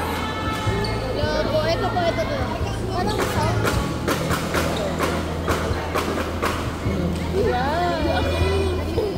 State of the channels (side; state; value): both; identical; correlation 1.00